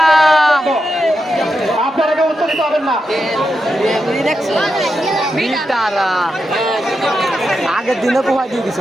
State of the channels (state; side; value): normal; both; correlation 0.87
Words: আপনারা উত্তরিত হবেন না। আগের দিনে কোথায় দিয়ে